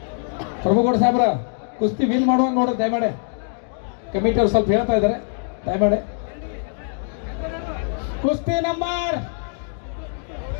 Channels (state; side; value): silent; right; digital silence